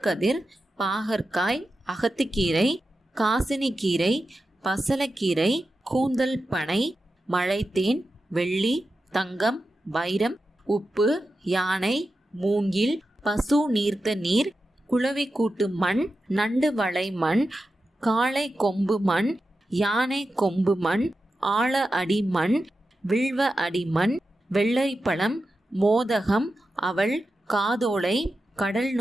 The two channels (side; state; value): both; normal; correlation 0.91